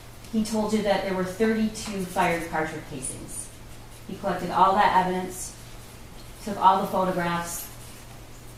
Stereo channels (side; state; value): both; identical; correlation 1.00